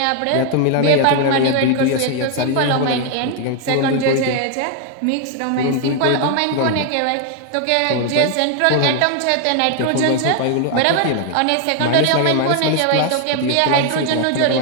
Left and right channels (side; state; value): both; different; correlation 0.00